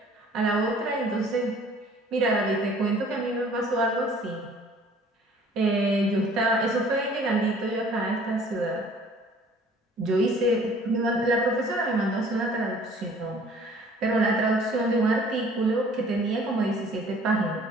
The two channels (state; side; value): normal; both; correlation 0.53